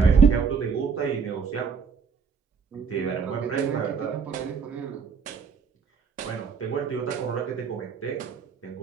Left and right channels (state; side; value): quieter; left; 5.8 dB